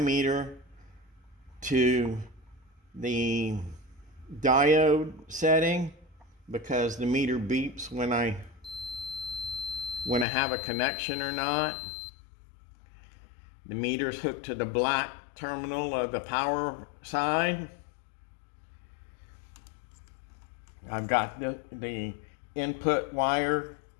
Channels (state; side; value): drops out; right; at 10.2 s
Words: to the diode setting because the meter beeps when I have a connection or not. The meter's hooked to the black terminal of the power side. I've got the input wire